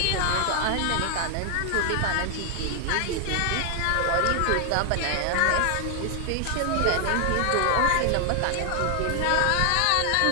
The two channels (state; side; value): different; both; correlation 0.00